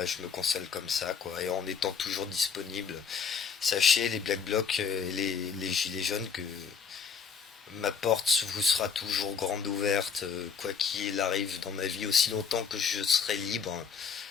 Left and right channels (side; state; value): right; quieter; 6.1 dB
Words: je me console comme ça, quoi. Et en étant toujours disponible. Sachez, les Black Blocs et les Gilets jaunes, que ma porte vous sera toujours grande ouverte, quoi qu'il arrive dans ma vie, aussi longtemps que je serai libre.